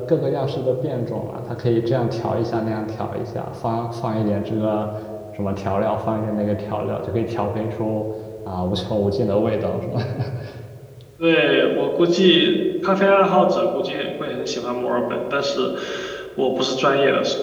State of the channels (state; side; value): identical; both; correlation 1.00